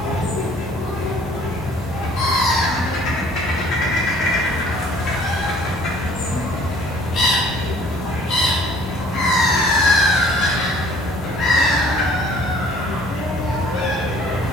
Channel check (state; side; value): normal; both; correlation 0.55